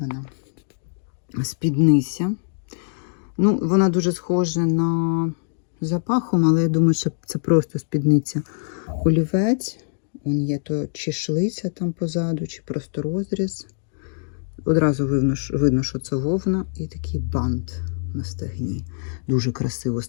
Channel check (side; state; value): right; silent; digital silence